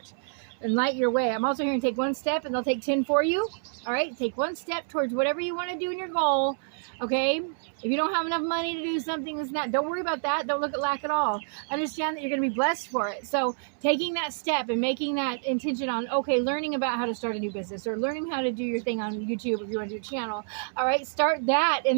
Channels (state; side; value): silent; left; 59 dB below the other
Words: and light your way. I'm also hearing take one step and they'll take 10 for you. All right, take one step towards whatever you want to do in your goal. Okay, if you don't have enough money to do something that's not, don't worry about that. Don't look at lack at all. Understand that you're going to be blessed for it. So taking that step and making that intention on, okay, learning about how to start a new business or learning how to do your thing on YouTube if you want to do a channel. All right, start that